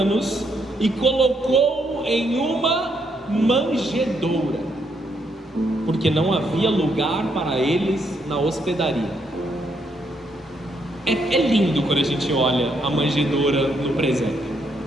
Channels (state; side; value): normal; both; correlation 0.75